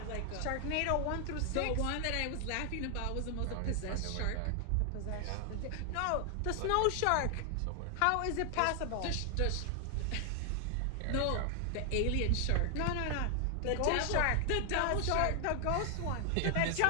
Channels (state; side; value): different; both; correlation 0.00